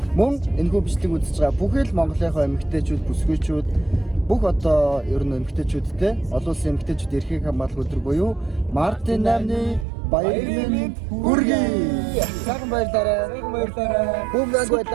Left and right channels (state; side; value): drops out; left; at 9.9 s